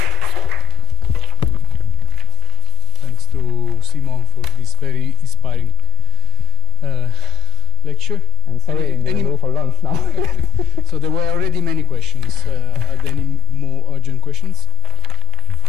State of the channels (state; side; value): normal; both; correlation 0.48